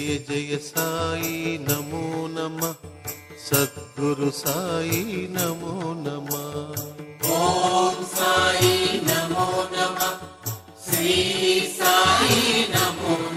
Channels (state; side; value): identical; both; correlation 1.00